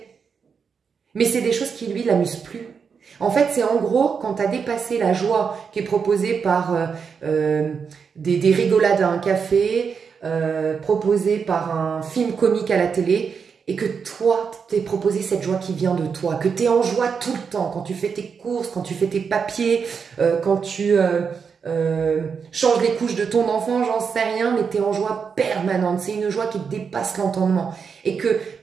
Mais c'est des choses qui, lui, l'amusent plus. En fait, c'est en gros, quand tu as dépassé la joie qui est proposée par des rigolades à un café, proposée par un film comique à la télé, et que toi, t'es proposé cette joie qui vient de toi, que tu es en joie tout le temps, quand tu fais tes courses, quand tu fais tes papiers, quand tu changes les couches de ton enfant, j'en sais rien, mais tu es en joie permanente. C'est une joie qui dépasse l'entendement. Et que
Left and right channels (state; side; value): quieter; left; 6.1 dB